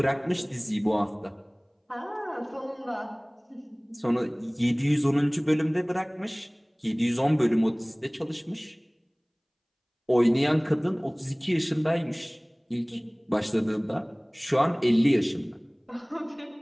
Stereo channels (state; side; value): identical; both; correlation 1.00